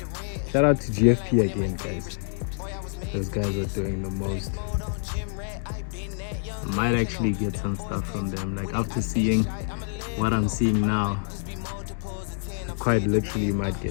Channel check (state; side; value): silent; right; digital silence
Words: Shout out to GFP again, guys. Those guys are doing the most. I might actually get some stuff from them. Like after seeing what I'm seeing now, I quite literally might